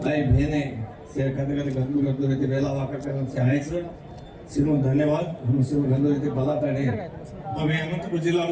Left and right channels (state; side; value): identical; both; correlation 1.00